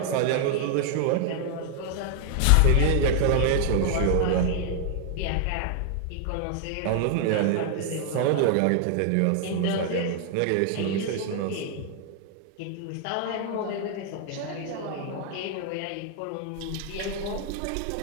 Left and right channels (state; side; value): different; both; correlation 0.00